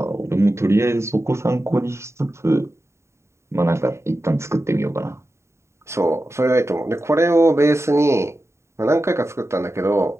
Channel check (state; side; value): late; left; 0.13 ms